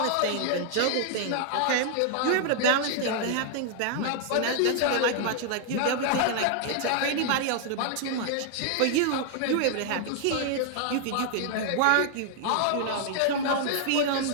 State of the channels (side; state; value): both; different; correlation 0.00